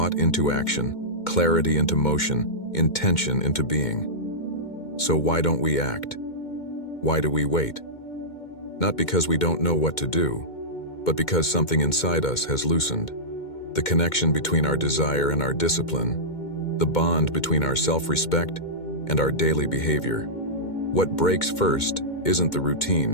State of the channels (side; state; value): right; late; 2.2 ms